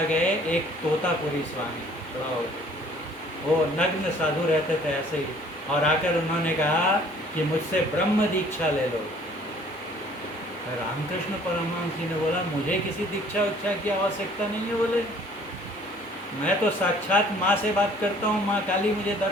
गए एक तोतापुरी स्वामी, वो नग्न साधु रहते थे ऐसे ही, और आकर उन्होंने कहा कि मुझसे ब्रह्म दीक्षा ले लो। रामकृष्ण परमहंस जी ने बोला मुझे किसी दीक्षा उच्छा की आवश्यकता नहीं है। बोले मैं तो साक्षात माँ से बात करता हूँ, माँ काली मुझे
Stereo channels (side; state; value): both; normal; correlation 0.55